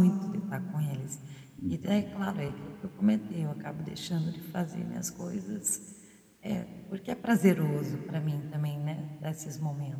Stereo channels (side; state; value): both; identical; correlation 1.00